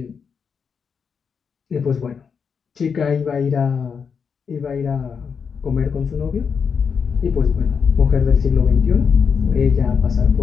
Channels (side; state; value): right; quieter; 6.3 dB